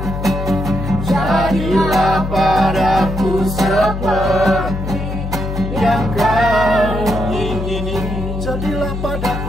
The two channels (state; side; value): noise; left; hum, 5 dB below the sound